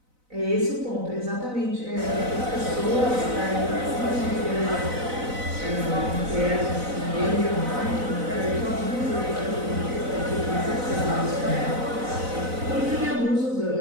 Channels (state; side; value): late; left; 4.0 ms